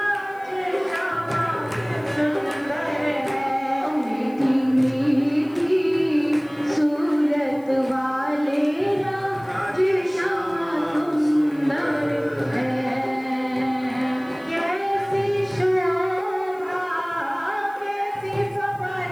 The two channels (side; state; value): left; noise; hiss, 29 dB below the sound